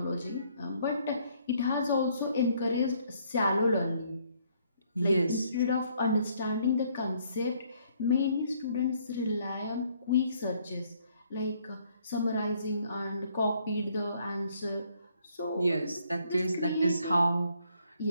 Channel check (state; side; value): inverted; both; correlation -0.66